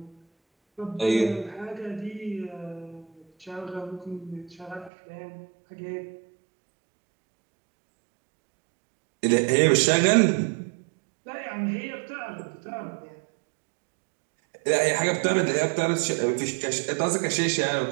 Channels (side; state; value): left; drops out; at 4.9 s